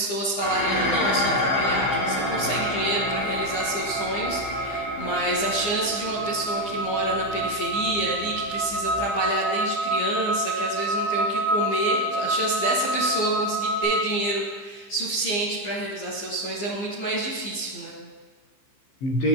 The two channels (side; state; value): right; late; 15 ms